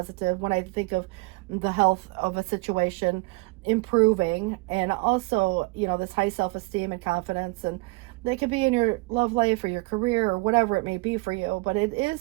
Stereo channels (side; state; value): left; quieter; 25.8 dB